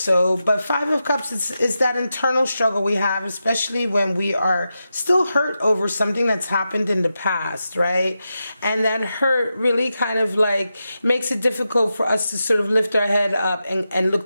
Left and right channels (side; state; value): both; inverted; correlation -0.89